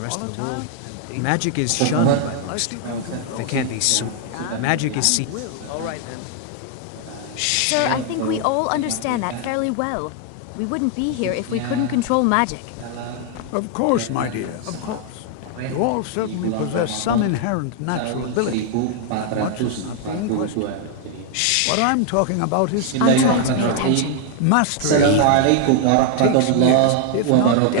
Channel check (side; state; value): both; different; correlation 0.00